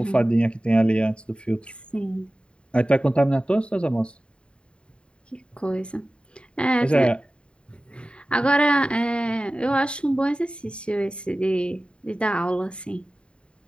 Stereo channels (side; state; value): right; late; 0.054 ms